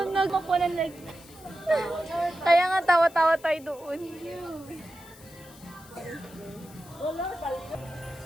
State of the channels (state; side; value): noise; left; hiss, 22 dB below the sound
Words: Makuha na like... Kaya nga tawa-tawa tayo doon. Wala talaga.